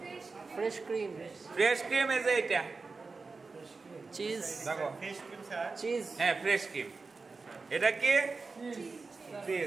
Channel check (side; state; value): left; quieter; 4.2 dB